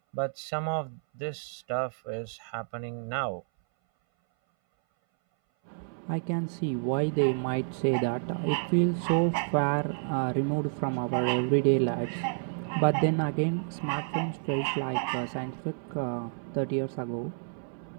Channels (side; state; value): left; silent; 58 dB below the other